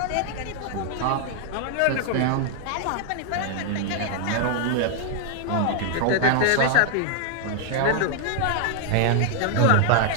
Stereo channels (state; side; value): different; both; correlation 0.00